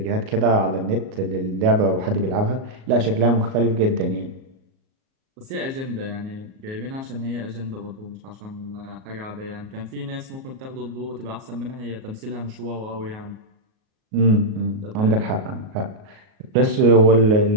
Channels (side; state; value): left; late; 38 ms